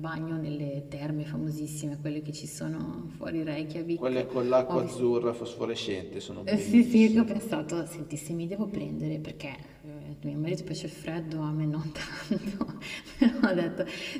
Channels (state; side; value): identical; both; correlation 1.00